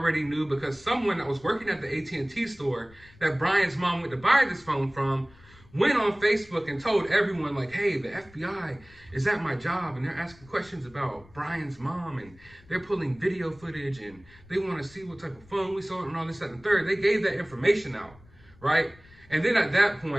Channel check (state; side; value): noise; left; rumble, 25 dB below the sound